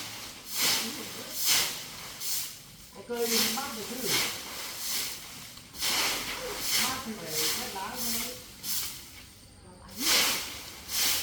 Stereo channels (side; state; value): both; identical; correlation 1.00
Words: Có cây thì mát được chứ. Mát thì phải hết lá thôi.